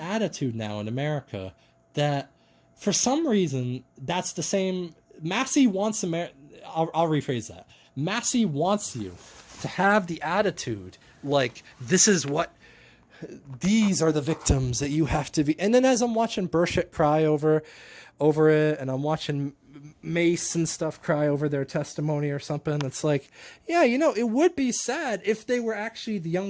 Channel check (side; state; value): both; identical; correlation 1.00